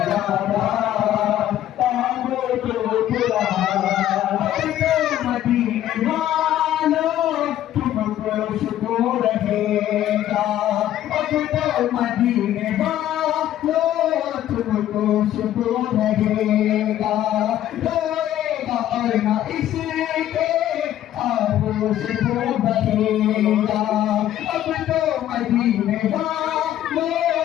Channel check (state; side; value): quieter; right; 12.3 dB